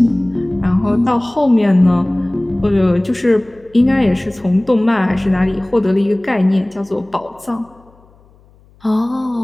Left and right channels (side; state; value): left; noise; hum, 30 dB below the sound